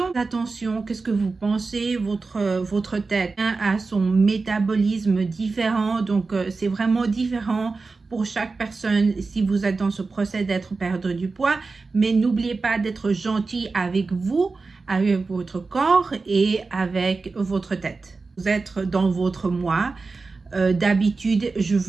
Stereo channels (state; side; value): quieter; left; 4.0 dB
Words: Attention, qu'est-ce que vous pensez? Votre tête a son métabolisme différent, donc c'est vraiment différent pour chaque personne si vous êtes dans ce procès d'être perdre du poids. Mais n'oubliez pas d'être gentil avec vous, avec votre corps et avec votre tête. Vous êtes dans votre mois. D'habitude, je